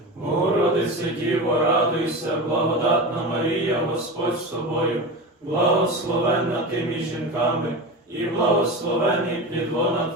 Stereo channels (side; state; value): both; normal; correlation 0.25